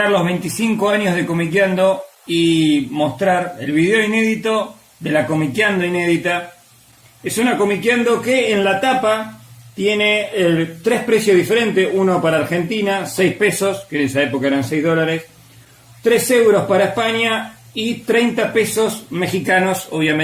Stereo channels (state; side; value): identical; both; correlation 1.00